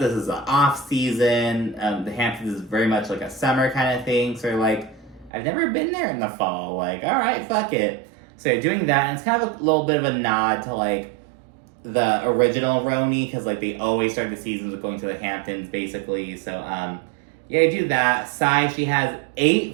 is an off-season. The Hamptons is very much like a summer kind of thing. So they're like, I've never been there in the fall. Like, all right, fuck it. So they're doing that, and it's kind of a little bit of a nod to, like, the original RHONY, because, like, they always start the seasons with going to the Hamptons, basically. So, yeah, do that. Sai, she has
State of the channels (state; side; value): drops out; left; at 5.3 s